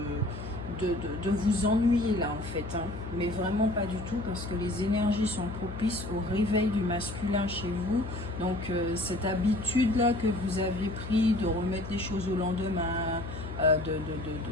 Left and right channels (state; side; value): noise; left; hum, 9 dB below the sound